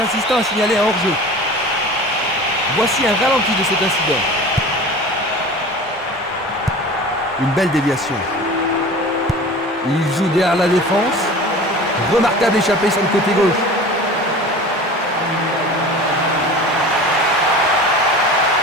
assistant a signalé un hors-jeu. Voici un ralenti de cet incident. Une belle déviation. Il joue derrière la défense. Remarquable échappée sur le côté gauche.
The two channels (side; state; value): both; normal; correlation 0.38